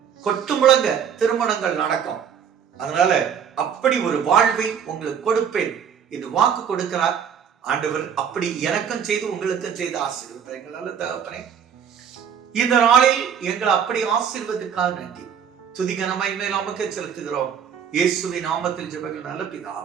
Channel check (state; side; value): quieter; left; 7.9 dB